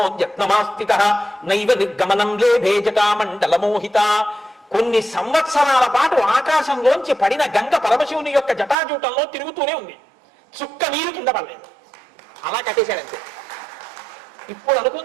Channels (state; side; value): drops out; left; at 8.8 s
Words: నైవ నిర్గమనం లేభే జటామండలమోహిత. కొన్ని సంవత్సరాల పాటు ఆకాశంలోంచి పడిన గంగ పరమశివుని యొక్క జటాజూటంలో తిరుగుతూనే ఉంది. చుక్క నీరు కింద పడలేదు. అలా కట్టేశాడంతే. ఇప్పుడు